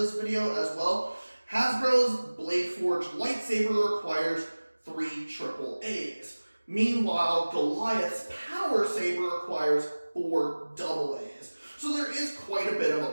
video as well, Hasbro's Blade Forge lightsaber requires 3 AAAs. Meanwhile, Goliath's Power Saber requires 4 AAAs. So there is quite a bit of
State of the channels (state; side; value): inverted; both; correlation -1.00